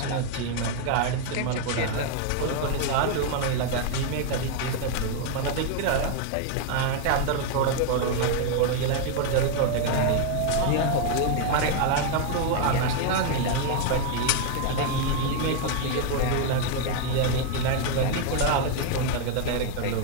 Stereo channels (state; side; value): different; both; correlation 0.00